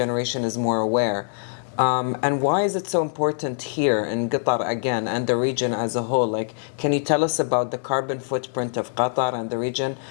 is more aware? And why is it so important here in Qatar again and the region as a whole? Like, can you tell us about the carbon footprint of Qatar and the region?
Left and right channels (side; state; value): right; silent; 63 dB below the other